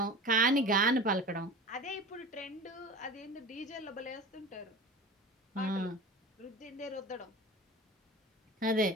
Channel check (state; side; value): normal; both; correlation 0.35